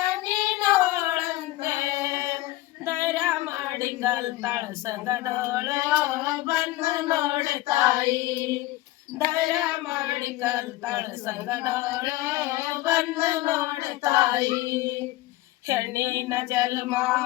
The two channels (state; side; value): quieter; right; 17.5 dB